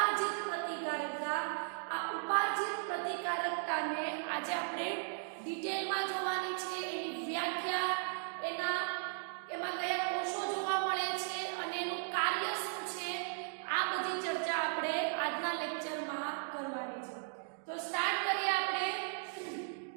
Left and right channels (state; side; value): silent; left; digital silence